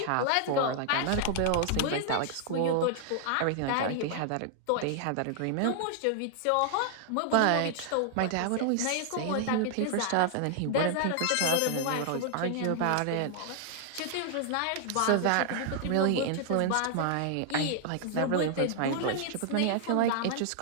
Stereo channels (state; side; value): different; both; correlation -0.01